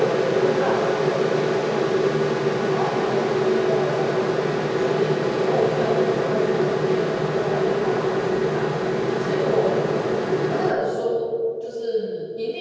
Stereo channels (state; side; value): identical; both; correlation 1.00